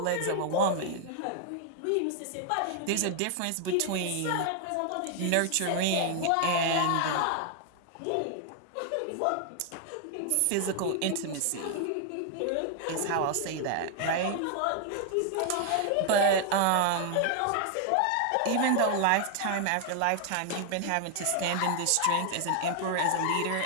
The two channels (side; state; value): both; different; correlation 0.00